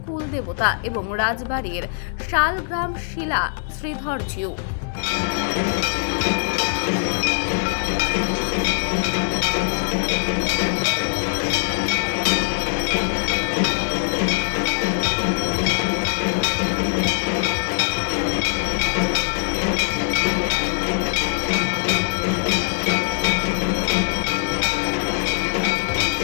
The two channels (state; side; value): silent; right; 64 dB below the other